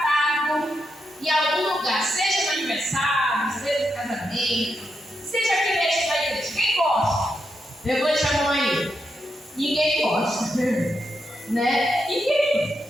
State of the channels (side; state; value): both; normal; correlation 0.84